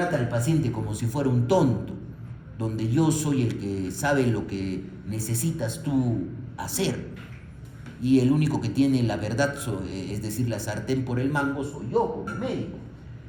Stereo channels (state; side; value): identical; both; correlation 1.00